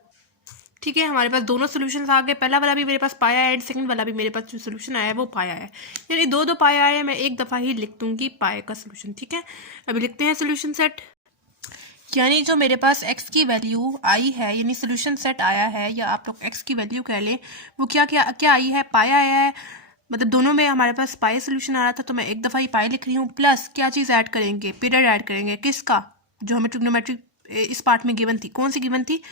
ठीक है। हमारे पास दोनों सोल्यूशन आ गए, पहला वाला भी मेरे पास पाया है एंड सेकंड वाला भी मेरे पास जो सोल्यूशन आया है वो पाया है, यानी दो पाया है। मैं एक दफ़ा ही लिख दूंगी पाए का सोल्यूशन, ठीक है। अभी लिखते हैं सोल्यूशन सेट, यानी जो मेरे पास x की वैल्यू आई है, यानी सोल्यूशन सेट आया है, या आप लोग x की वैल्यू कह लें, वो क्या क्या क्या आई है, पाया आया है। मतलब दोनों में हमारे पास पाई सोल्यूशन आ रहा था, तो मैं एक दफ़ा ही पाई लिख रही हूँ। प्लस क्या चीज़ ऐड करेंगे, पीरियड ऐड करेंगे, किसका, जो हमें ट्रिग्नोमेट्री इस पार्ट में गिवन थी, कौन सी गिवन थी,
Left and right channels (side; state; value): both; normal; correlation 0.02